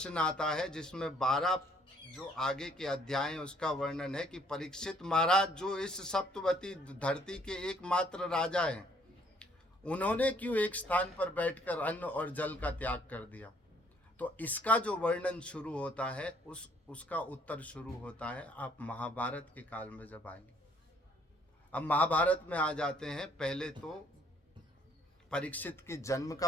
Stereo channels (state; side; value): normal; both; correlation 0.63